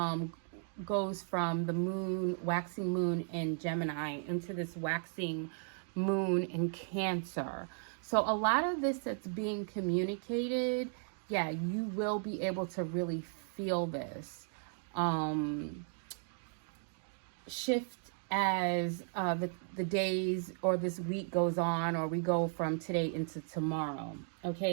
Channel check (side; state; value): left; silent; 54 dB below the other